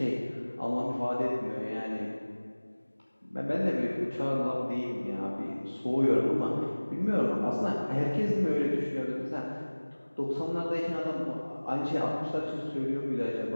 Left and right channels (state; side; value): inverted; both; correlation -1.00